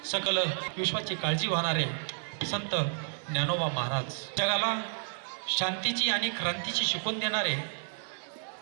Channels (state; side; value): silent; left; digital silence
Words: सकल विश्वाची काळजी वाहणारे संत ज्ञानोबा महाराज, जगाला शांतीची आणि क्रांतीची शिकवण देणारे